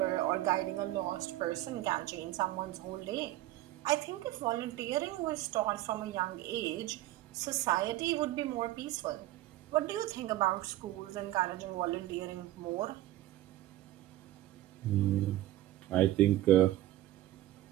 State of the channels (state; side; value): quieter; left; 15.0 dB